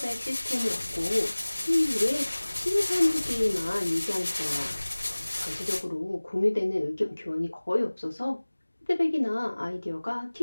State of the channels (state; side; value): inverted; both; correlation -1.00